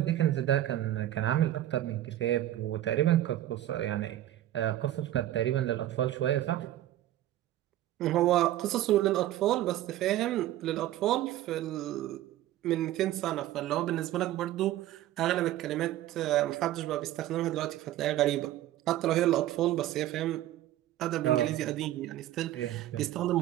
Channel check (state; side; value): quieter; left; 13.7 dB